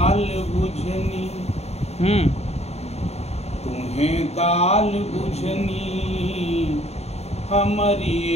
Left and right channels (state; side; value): late; right; 0.31 ms